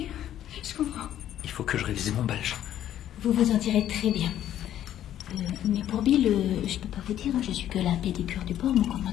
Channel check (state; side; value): quieter; right; 11.5 dB